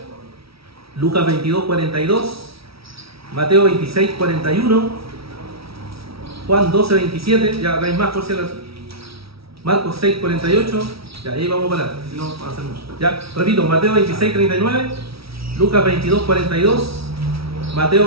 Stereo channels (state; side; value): late; left; 0.76 ms